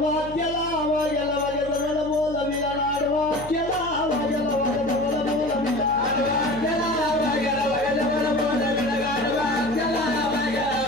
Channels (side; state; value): left; noise; hum, 16 dB below the sound